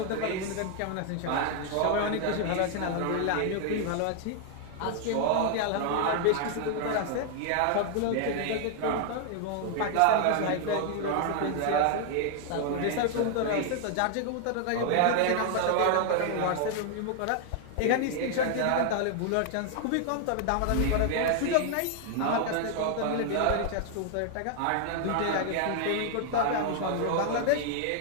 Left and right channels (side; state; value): both; different; correlation 0.00